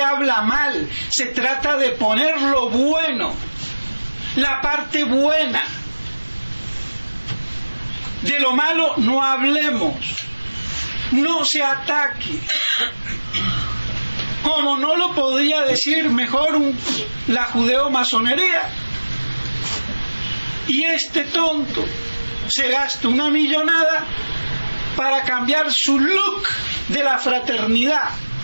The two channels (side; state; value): both; inverted; correlation -1.00